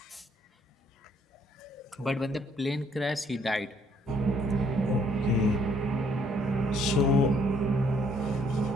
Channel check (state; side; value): normal; both; correlation 0.66